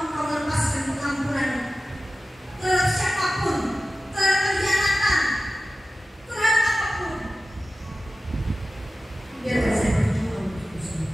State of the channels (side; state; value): both; normal; correlation 0.95